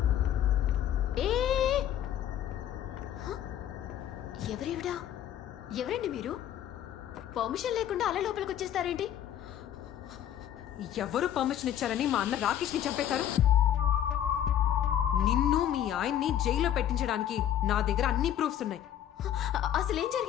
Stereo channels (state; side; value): quieter; right; 10.8 dB